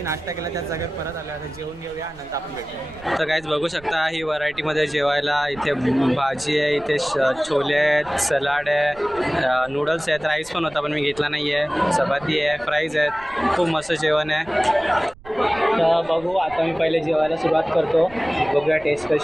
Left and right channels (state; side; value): noise; right; rumble, 22 dB below the sound